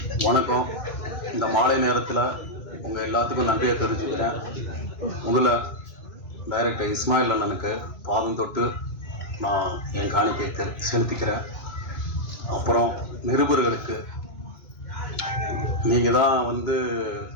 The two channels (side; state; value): right; late; 2.2 ms